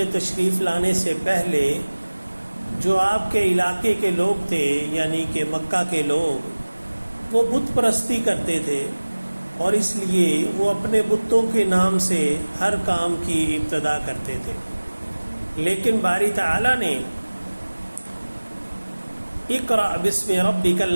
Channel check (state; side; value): inverted; both; correlation -1.00